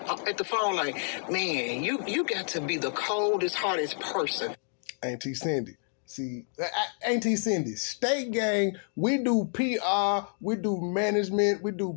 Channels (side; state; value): right; silent; 59 dB below the other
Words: at the phone like, man, you got to be the coldest, hardest person. Auntie Cindy. See, Auntie Cindy, State Gang, we do PR, we do management, we do